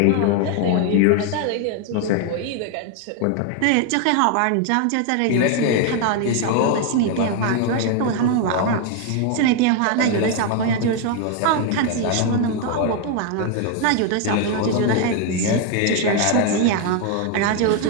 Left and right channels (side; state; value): both; different; correlation 0.01